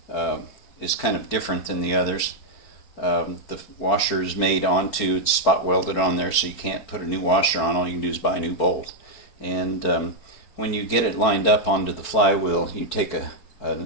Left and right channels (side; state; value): right; late; 4.5 ms